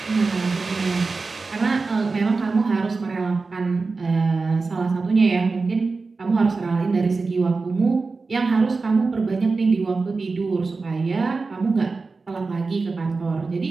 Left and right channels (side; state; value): left; quieter; 4.1 dB